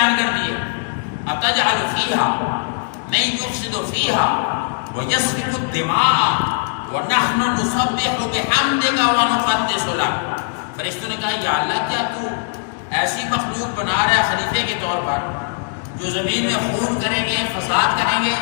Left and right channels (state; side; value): silent; right; digital silence